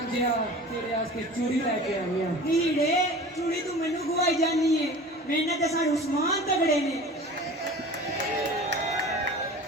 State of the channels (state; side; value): normal; both; correlation 0.39